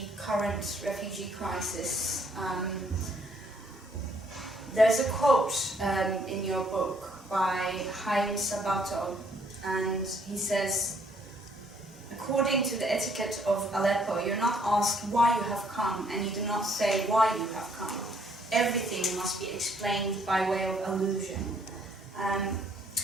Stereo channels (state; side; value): normal; both; correlation 0.66